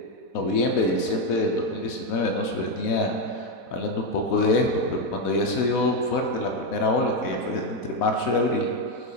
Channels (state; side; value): late; right; 4.1 ms